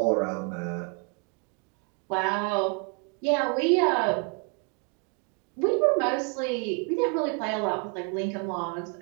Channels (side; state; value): left; quieter; 35.2 dB